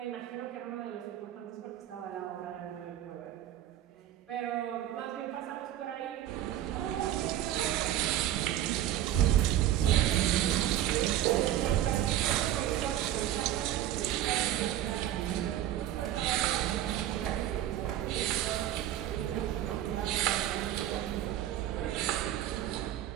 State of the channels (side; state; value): left; quieter; 12.4 dB